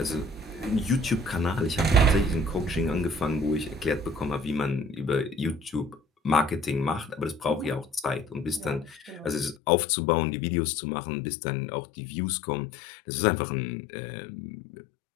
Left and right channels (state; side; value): drops out; right; at 9.6 s